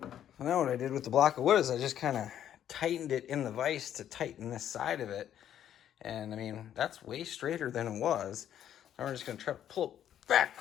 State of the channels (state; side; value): quieter; right; 10.4 dB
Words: So now what I did with the block of wood is I just kind of tightened it in the vise to tighten this side of it. And I mean, that's way straighter than it was. Now we're just gonna try to pull it back